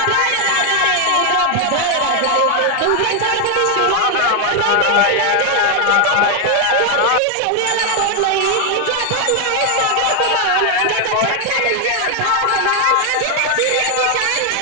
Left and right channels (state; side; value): different; both; correlation 0.01